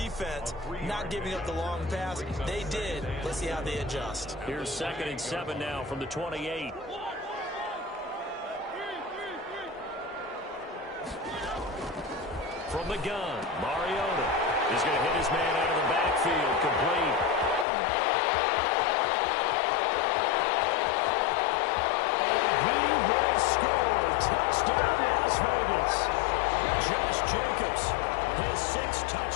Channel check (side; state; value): right; drops out; at 17.7 s